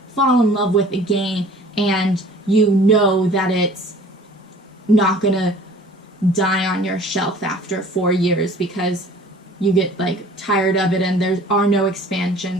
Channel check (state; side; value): normal; both; correlation 0.49